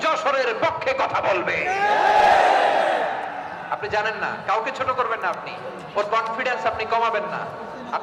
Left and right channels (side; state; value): both; identical; correlation 1.00